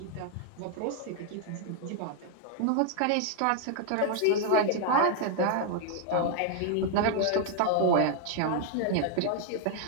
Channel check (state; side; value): different; both; correlation 0.00